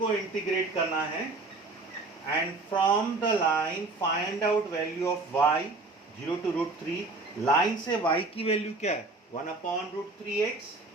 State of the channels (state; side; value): quieter; left; 3.4 dB